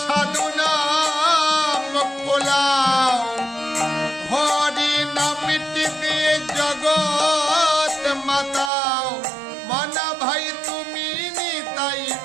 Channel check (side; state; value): left; drops out; at 8.7 s